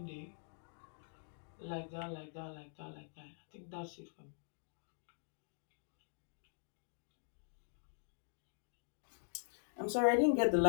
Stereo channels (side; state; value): right; silent; digital silence